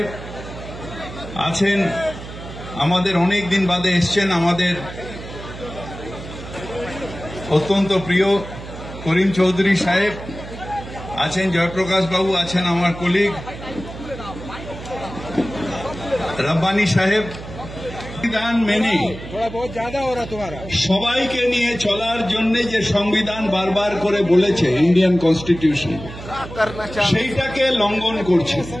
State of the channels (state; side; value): noise; right; hum, 12 dB below the sound